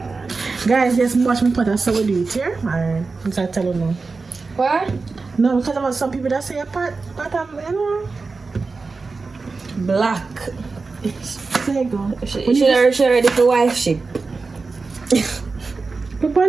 Guys, just watch me put a so we do it here. Alright, I'm trying to tell you now. What? No, because there are some people that say a pot, you know. Black. There you go. She ready for wife ship. She's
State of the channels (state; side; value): quieter; left; 4.1 dB